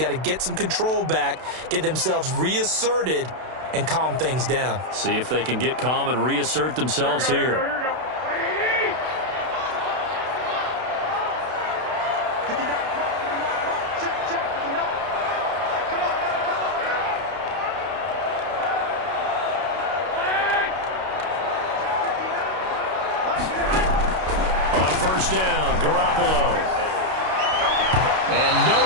to get some control back, get themselves reasserted, and calm things down. See if they can get calm and reassert themselves here. First down, Garoppolo. And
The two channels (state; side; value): late; left; 32 ms